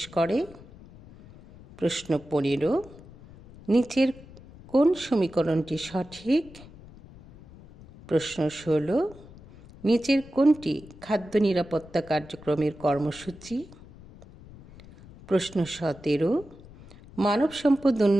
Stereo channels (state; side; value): noise; left; rumble, 20 dB below the sound